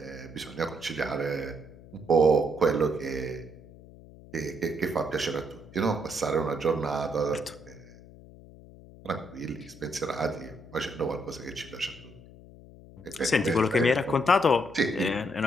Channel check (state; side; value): noise; left; hum, 20 dB below the sound